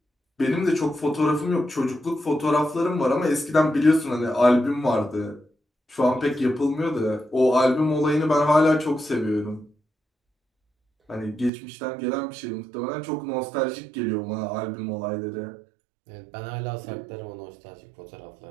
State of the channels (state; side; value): drops out; left; at 11.5 s